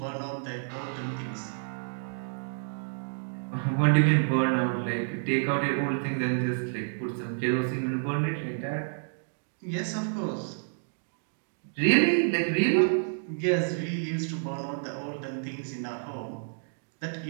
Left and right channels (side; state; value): left; silent; digital silence